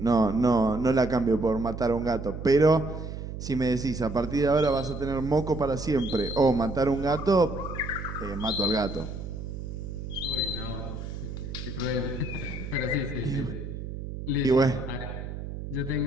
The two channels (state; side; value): noise; right; hum, 8 dB below the sound